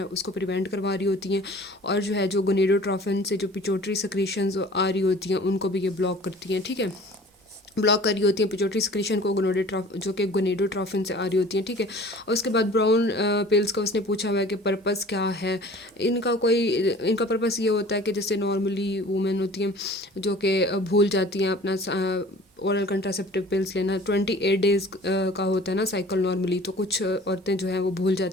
उसको प्रिवेंट करवा रही होती हैं। और जो है जो गोनेडोट्रोफिन से जो पिट्यूटरी सेक्रीशंस आ रही होती हैं उनको भी ये ब्लॉक करती हैं, ठीक है। ब्लॉक कर रही होती हैं पिट्यूटरी सिक्रीशन को जो कि गोनेडोट्रोफिन से आ रही होती हैं, ठीक है। और उसके बाद ब्राउन पिल्स का उसने पूछा हुआ है कि पर्पस क्या है इनका पर्पस ये होता है कि जैसे नॉर्मली वुमेन होती हैं जो कि भूल जाती हैं अपना ओरल कंट्रासेप्टिव पिल्स लेना। 28 डेज़ का होता है ना साइकिल नॉर्मली, तो कुछ औरतें जो हैं वो भूल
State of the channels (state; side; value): normal; both; correlation 0.46